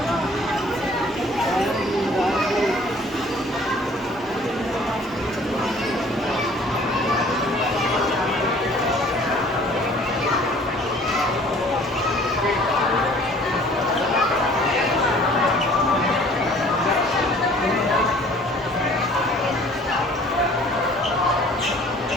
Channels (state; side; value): normal; both; correlation 0.53